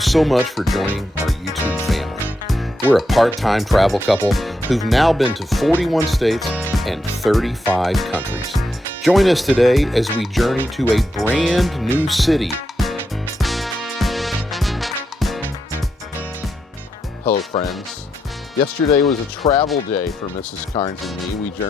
much for joining our YouTube family. We're a part-time travel couple who've now been to 41 states and 35 countries. Join us today as we journey to a brand new city. Hello, friends. Yesterday was a travel day for Mrs. Karnes and me. We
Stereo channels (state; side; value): normal; both; correlation 0.83